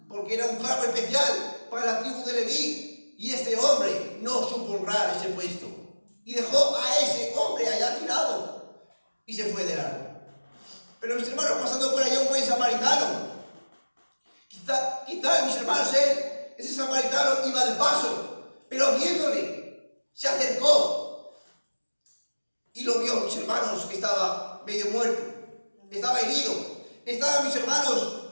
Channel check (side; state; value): both; inverted; correlation -1.00